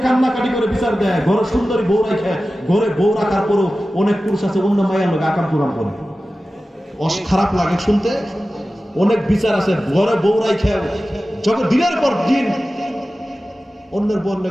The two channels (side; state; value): both; normal; correlation 0.95